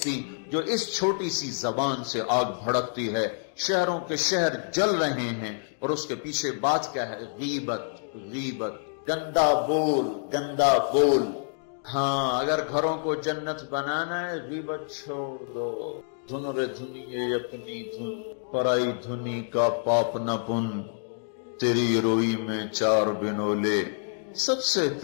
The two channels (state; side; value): silent; right; digital silence